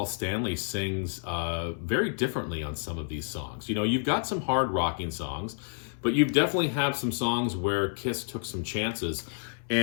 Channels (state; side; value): silent; right; 58 dB below the other